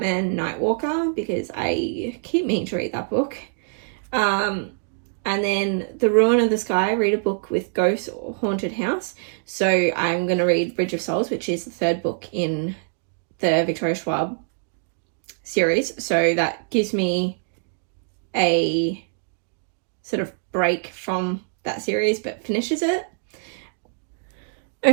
Nightwalker, because I keep meaning to read that book. And then The Ruin of the Sky, read a book with ghosts or haunted house. So I'm going to read Bridge of Souls, which is the third book in the Victoria Schwab series. So that gives me a sort of break from that series, but finishes it.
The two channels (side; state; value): left; silent; digital silence